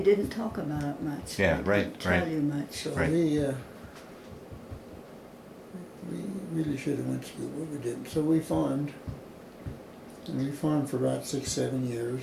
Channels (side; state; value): both; identical; correlation 1.00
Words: talk about it much. Yeah, They right, didn't tell right. you much. so Right. we really should have went to school, but we didn't. So we farmed, and we farmed for about 6-7 years,